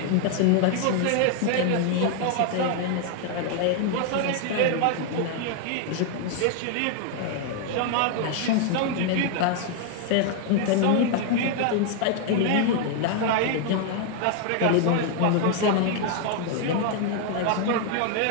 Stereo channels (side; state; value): both; different; correlation 0.00